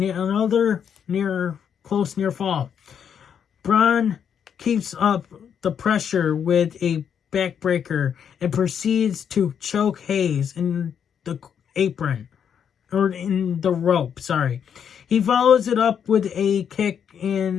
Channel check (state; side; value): quieter; right; 8.0 dB